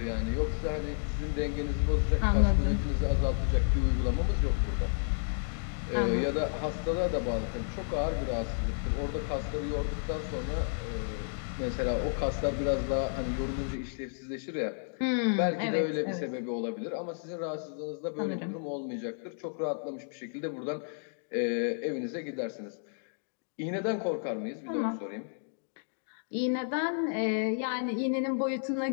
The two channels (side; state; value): right; silent; digital silence